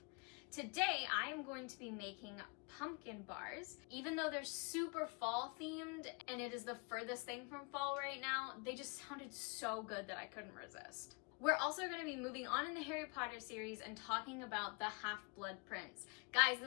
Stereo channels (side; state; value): right; quieter; 32.0 dB